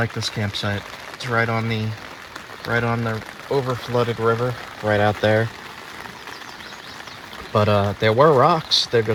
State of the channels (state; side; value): identical; both; correlation 1.00